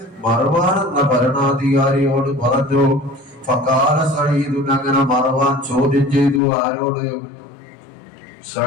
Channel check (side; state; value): right; drops out; at 6.4 s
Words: മർവാൻ എന്ന ഭരണാധികാരിയോട് പറഞ്ഞു. ഫഖാല സഈദ്, അങ്ങനെ മർവാൻ ചോദ്യം ചെയ്തു. ആരോട്?